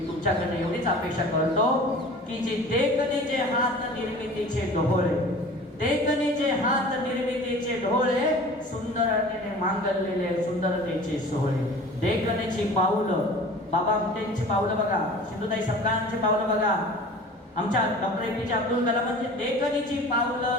तुमच्याकडे एवढीच अपेक्षा करतो की जे देखणेचे हात निर्मितीचे डोळे, देखणेचे हात निर्मितीचे ढोळे, सुंदरतेने मांगलेले सुंदरतेचे सोहळे. देखणेची पाऊलं, बाबा आमटेंची पावलं बघा, सिंधुताई सपकाळांची पावलं बघा, आमच्या डॉक्टर APJ अब्दुल कलामांची देखणीची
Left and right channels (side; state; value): both; normal; correlation 0.42